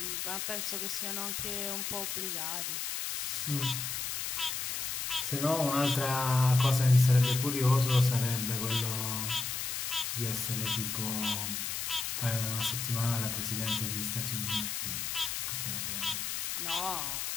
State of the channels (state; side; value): noise; left; hiss, 2 dB below the sound